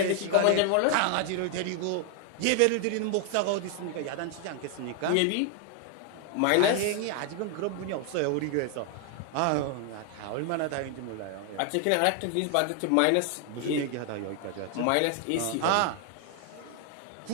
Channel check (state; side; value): different; both; correlation 0.00